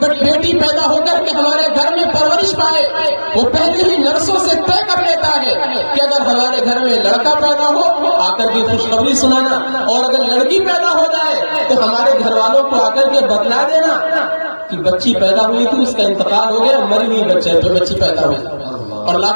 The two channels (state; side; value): inverted; both; correlation -1.00